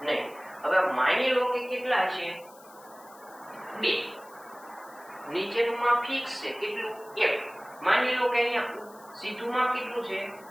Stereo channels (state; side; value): noise; left; hiss, 24 dB below the sound